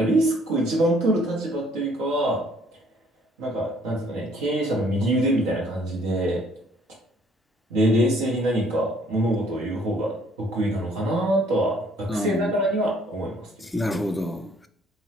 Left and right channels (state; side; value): normal; both; correlation 0.61